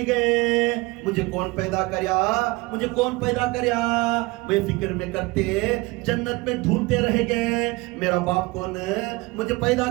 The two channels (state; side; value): quieter; left; 23.5 dB